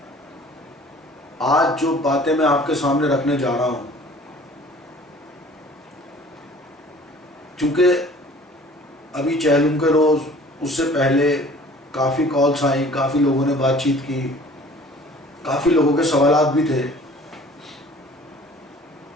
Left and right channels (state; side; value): normal; both; correlation 0.50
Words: آج جو باتیں میں آپ کے سامنے رکھنے جا رہا ہوں، چونکہ ابھی چہلم کے روز اس سے پہلے کافی کالز آئیں، کافی لوگوں نے بات چیت کی، کافی لوگوں کے سوالات بھی تھے،